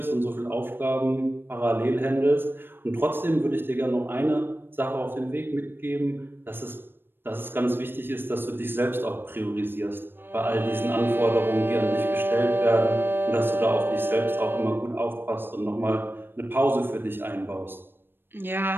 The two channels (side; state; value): left; late; 0.099 ms